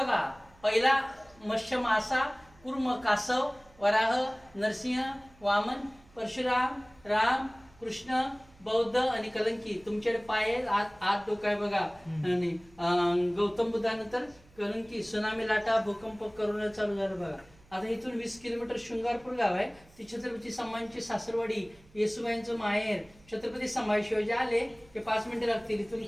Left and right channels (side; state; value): right; noise; hum, 27 dB below the sound